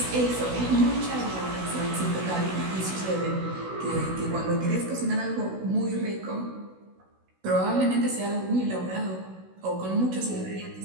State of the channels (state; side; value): late; left; 16 ms